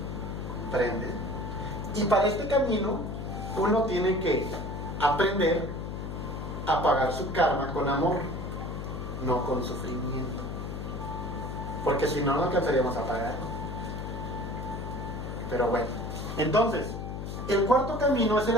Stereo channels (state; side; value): noise; left; hum, 6 dB below the sound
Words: ¿Comprende? Y para este camino, uno tiene que aprender a pagar su karma con amor, no con sufrimiento. Porque si no, no alcanzaríamos a pagarlo. Pero bueno, entonces, el cuarto camino es el